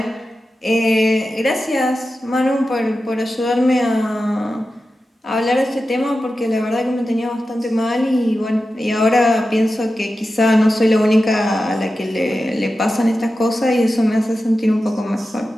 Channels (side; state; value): both; normal; correlation 0.92